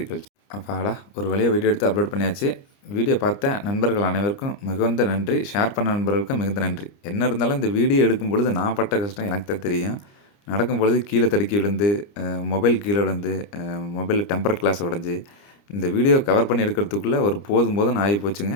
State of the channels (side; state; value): right; late; 29 ms